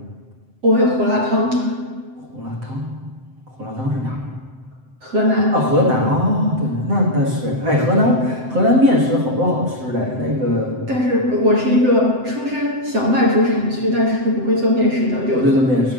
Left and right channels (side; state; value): left; late; 7.8 ms